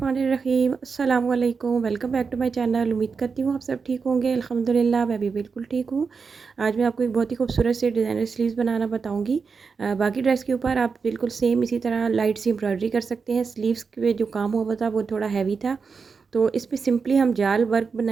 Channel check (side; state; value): left; quieter; 5.2 dB